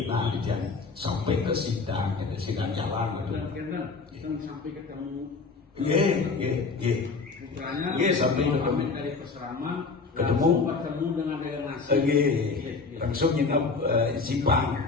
nah dia sampai ke sidang jalan gitu. Sampai ketemu. Iya sampai ketemu dari Peseraman ketemu dengan delegasi. Langsung nginep Simpang.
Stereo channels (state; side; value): quieter; right; 4.4 dB